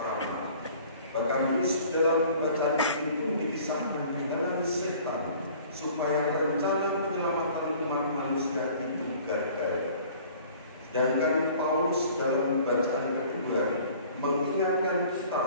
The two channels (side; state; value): both; inverted; correlation -0.50